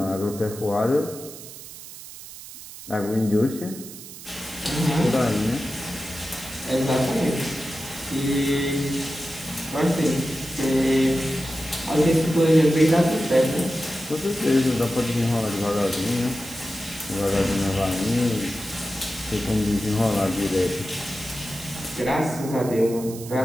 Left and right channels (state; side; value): noise; right; hiss, 14 dB below the sound